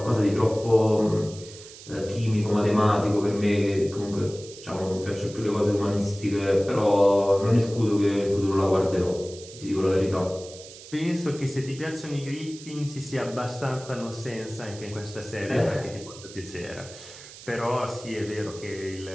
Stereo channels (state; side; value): noise; right; hiss, 17 dB below the sound